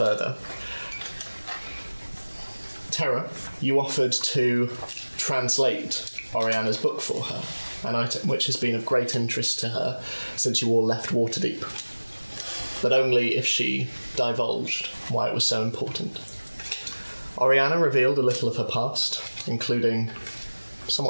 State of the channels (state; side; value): inverted; both; correlation -1.00